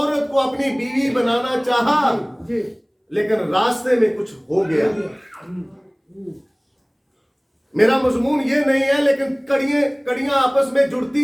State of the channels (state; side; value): identical; both; correlation 1.00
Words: को अपनी बीवी बनाना चाहा, लेकिन रास्ते में कुछ हो गया। मेरा मजमून ये नहीं है, लेकिन कड़ियां आपस में